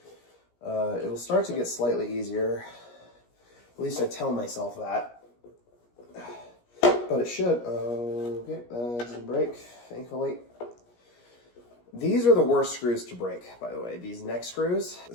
it'll start to get slightly easier. At least I tell myself that. But it should. Okay, that didn't break, thankfully. These are the worst screws to break, by the way, these neck screws.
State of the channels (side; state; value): right; late; 17 ms